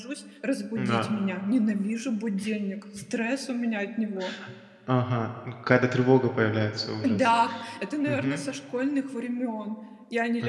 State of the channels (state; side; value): identical; both; correlation 1.00